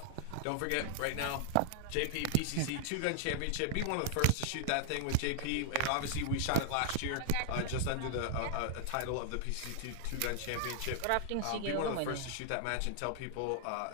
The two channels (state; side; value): different; both; correlation 0.00